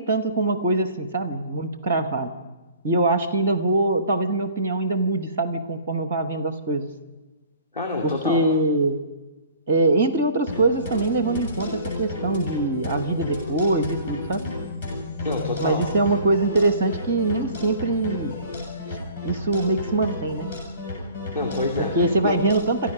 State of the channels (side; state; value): both; inverted; correlation -0.49